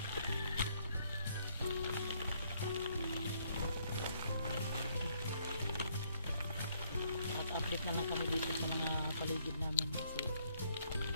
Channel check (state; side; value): inverted; both; correlation -0.68